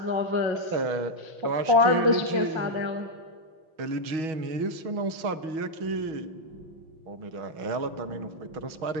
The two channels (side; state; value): left; late; 6.3 ms